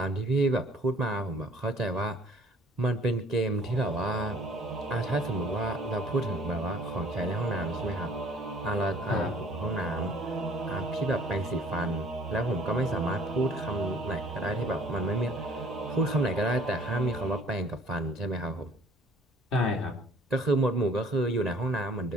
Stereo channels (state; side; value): normal; both; correlation 0.55